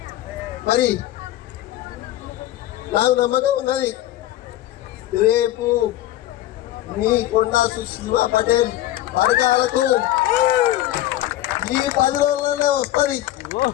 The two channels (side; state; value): right; quieter; 14.4 dB